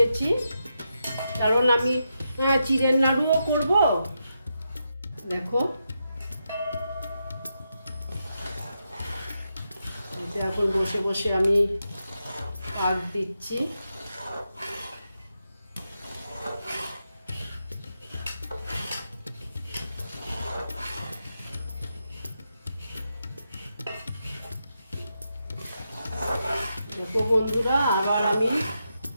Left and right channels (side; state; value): both; inverted; correlation -0.85